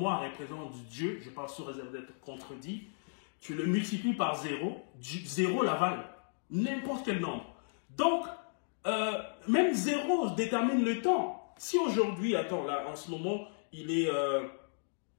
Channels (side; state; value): right; silent; digital silence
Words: représente Dieu, je parle sous réserve d'être contredit, tu le multiplies par 0, 0 l'avale. N'importe quel nombre. Donc, même 0 détermine le temps. Si aujourd'hui, attends, là, en ce moment, il est